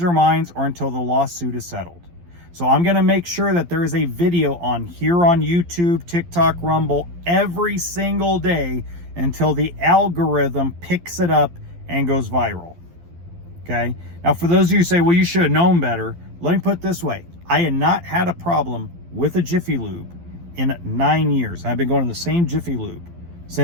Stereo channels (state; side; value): late; left; 12 ms